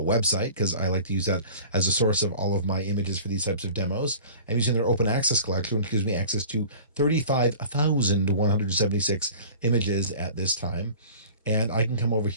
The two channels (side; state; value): both; inverted; correlation -0.42